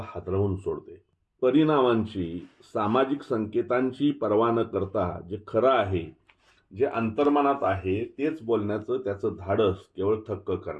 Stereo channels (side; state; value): both; identical; correlation 1.00